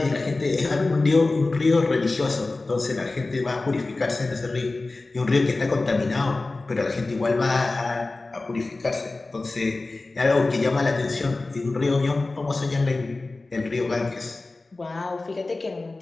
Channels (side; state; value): right; quieter; 3.3 dB